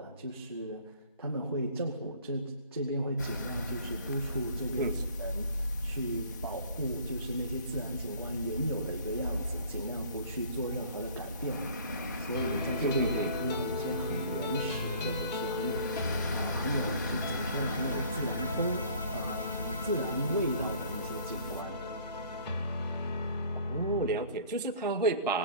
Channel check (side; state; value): both; inverted; correlation -0.52